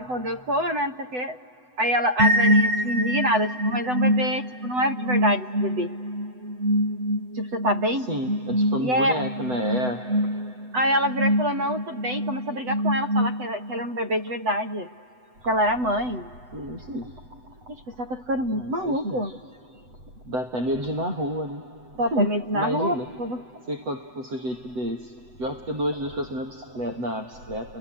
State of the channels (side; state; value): left; late; 8.0 ms